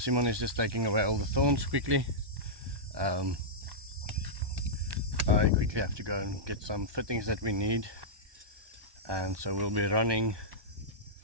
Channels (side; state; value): left; late; 1.2 ms